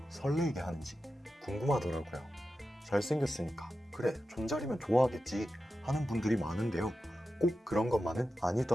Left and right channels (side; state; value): both; normal; correlation 0.92